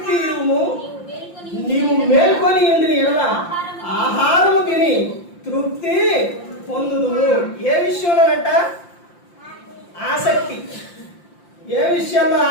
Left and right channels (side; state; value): right; late; 5.8 ms